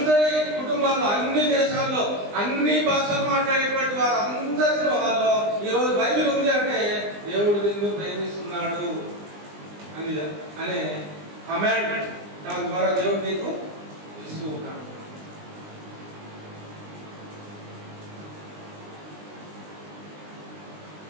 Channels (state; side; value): late; left; 20 ms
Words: కుటుంబాల్లో, అన్ని దేశాల్లో, అన్ని భాషలు మాట్లాడేటువంటి వారు అందరి వాళ్ళలో ఈ రోజు బైబిల్ ఉంది అంటే దేవుడు నిన్ను ప్రేమిస్తున్నాడు అనే కమాండ్ దాని ద్వారా దేవుడు నీకు ఇస్తూ ఉన్నాడు.